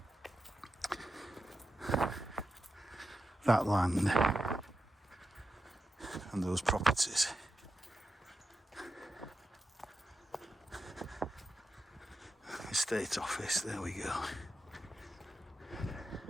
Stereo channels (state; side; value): normal; both; correlation 0.88